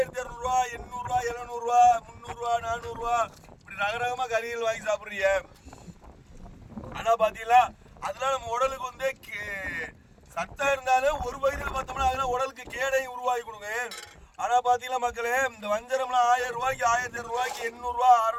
ரூபா 800 ரூபா 700 ரூபா 300 ரூபா 400 ரூபா இப்படி ரகரகமா கறிகள் வாங்கி சாப்பிடுறீங்க. ஆனா பாத்தீங்களா அதெல்லாம் நம்ம உடலுக்கு வந்து சத்தம் இருந்தாலும் ஒரு வயதுல பார்த்தோம்னா அதெல்லாம் உடலுக்கு கேடையும் உருவாக்கி கொடுங்க. ஆனா பாத்தீங்களா மக்களே இந்த வஞ்சரம்லாம் 1000 ரூபாய்க்கு 1200 ரூபாய்க்கு 800 ரூபா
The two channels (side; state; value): both; identical; correlation 1.00